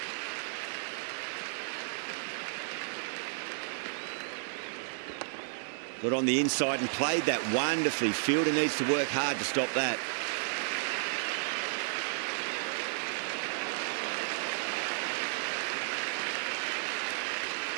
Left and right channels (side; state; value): left; silent; digital silence